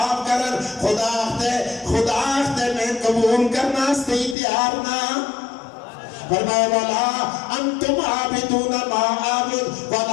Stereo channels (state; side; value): drops out; right; at 4.4 s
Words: کرن، خدا اختے میں قبول کرنا سے تیار نہ۔ فرمایا ولا انتم عابدون ما اعبد